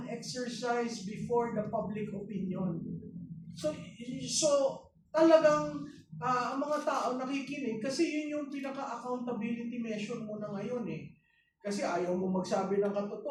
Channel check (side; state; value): both; identical; correlation 1.00